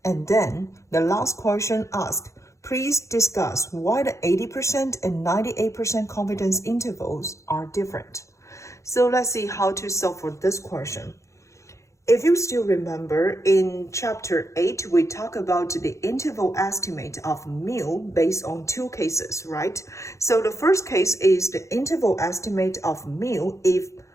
And then the last question asks, please discuss why the 80% and 98% confidence intervals are different. So let's see how to solve for this question. If you still remember, in chapter 8, we talk about the interval estimate of mu based on 2 cases, right? So the first case is the interval estimate of mu if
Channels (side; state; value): right; late; 0.15 ms